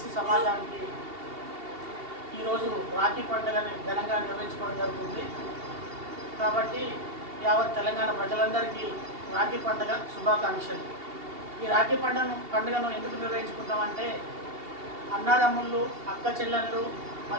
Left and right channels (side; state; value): left; late; 2.7 ms